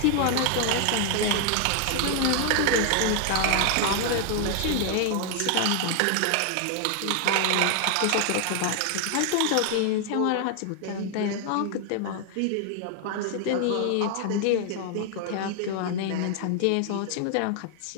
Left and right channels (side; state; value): both; different; correlation 0.00